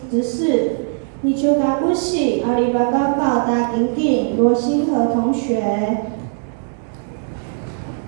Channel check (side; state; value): left; silent; digital silence